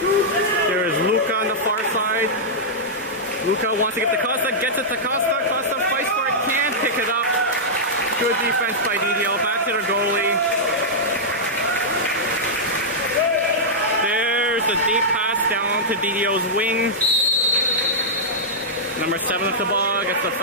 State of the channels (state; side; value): normal; both; correlation -0.11